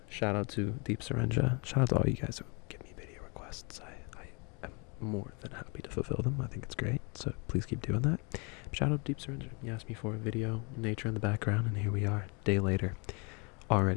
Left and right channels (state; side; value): quieter; right; 32.0 dB